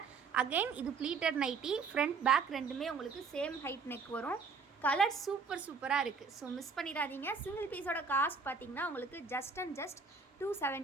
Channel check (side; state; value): left; quieter; 4.9 dB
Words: அகெயின் இது ப்ளீட்டட் நைட்டி. ஃப்ரண்ட் பேக் ரெண்டுமே உங்களுக்கு சேம் ஹைட் நெக் வரும். கலர் சூப்பராக இருக்குது. ஸோ மிஸ் பண்ணிடாதீங்க. சிங்கிள் பீஸோட காஸ்ட் பார்த்தீங்கன்னா உங்களுக்கு ஜஸ்ட்